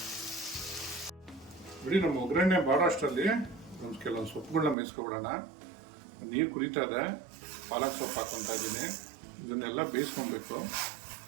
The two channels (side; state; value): left; drops out; at 4.8 s